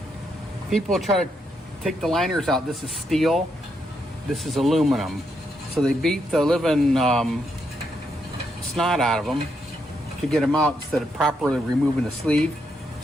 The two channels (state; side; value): normal; both; correlation 0.79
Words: people try to take the liners out. This is steel. This is aluminum. So they beat the living snot out of them to get them out instead of properly removing the sleeve.